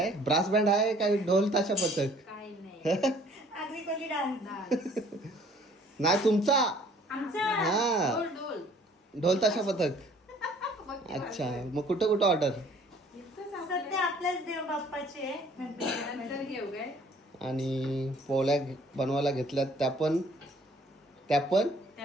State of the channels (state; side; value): normal; both; correlation 0.56